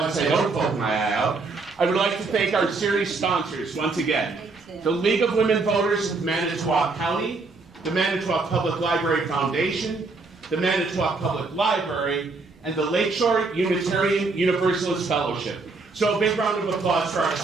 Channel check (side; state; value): left; quieter; 3.9 dB